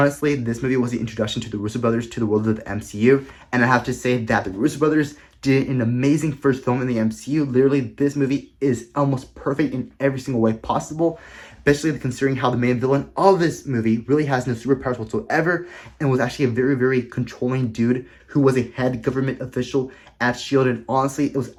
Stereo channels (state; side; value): identical; both; correlation 1.00